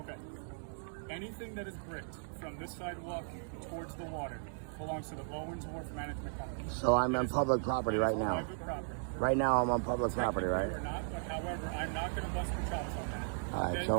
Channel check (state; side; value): silent; left; digital silence